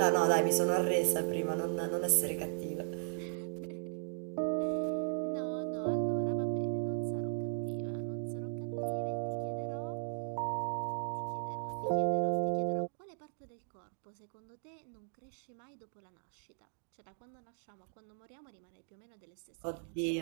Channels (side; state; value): left; silent; digital silence